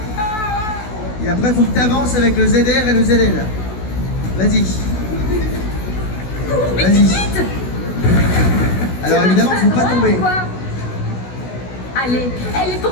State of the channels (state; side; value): late; right; 16 ms